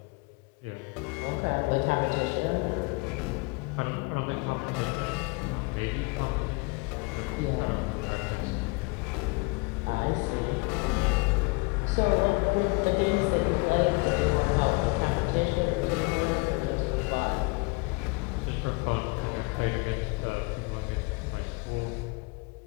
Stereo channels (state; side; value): quieter; right; 28.6 dB